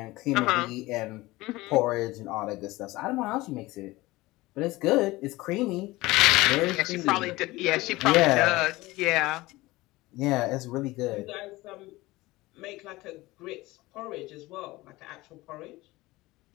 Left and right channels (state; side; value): quieter; right; 19.7 dB